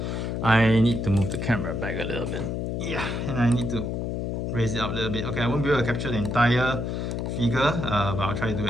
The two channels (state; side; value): noise; left; hum, 2 dB below the sound